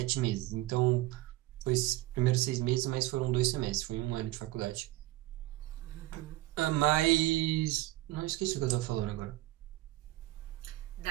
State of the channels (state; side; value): quieter; left; 17.7 dB